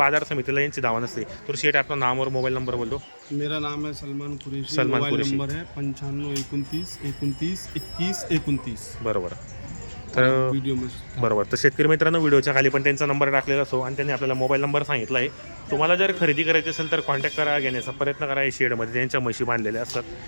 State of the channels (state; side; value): inverted; both; correlation -1.00